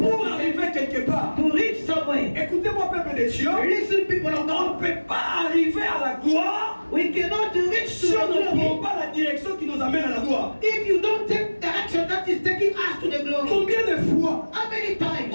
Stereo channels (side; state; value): both; inverted; correlation -1.00